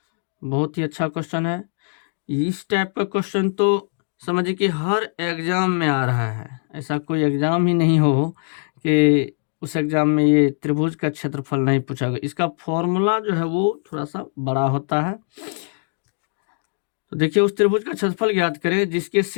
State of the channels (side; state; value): right; silent; 64 dB below the other